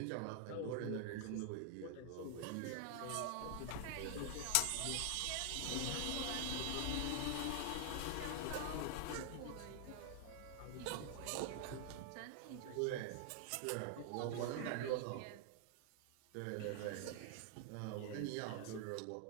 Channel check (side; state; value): both; different; correlation 0.00